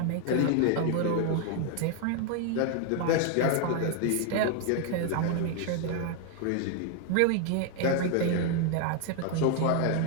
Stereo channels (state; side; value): different; both; correlation 0.00